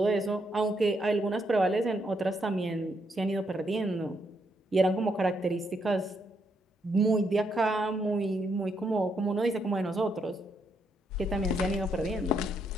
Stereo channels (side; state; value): both; normal; correlation 0.77